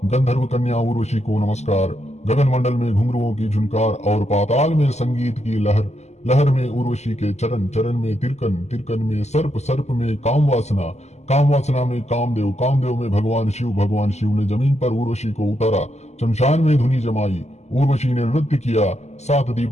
गंधर्व कन्या उर्वशी को नमस्कार। गगन मंडल में घुंघरुओं की झुनकार और पाताल में संगीत की लहर, लहर में उर्वशी के चरण, चरण में तिरकन, तिरकन में सर्प, सर्प में काम वासना, काम वासना में कामदेव, कामदेव में भगवान शिव, भगवान शिव ने जमीन पर उर्वशी को उतारा। शमशान में धुनी जमाई, उर्वशी ने नृत्य किया। सात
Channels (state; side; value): late; right; 0.33 ms